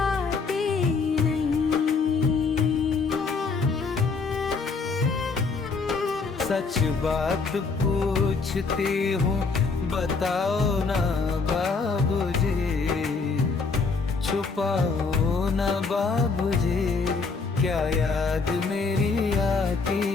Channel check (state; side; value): quieter; right; 4.5 dB